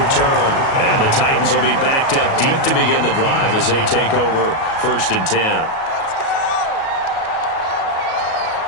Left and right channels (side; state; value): right; late; 37 ms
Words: return. And the Titans will be backed up deep to begin the drive as they take over 1st and 10.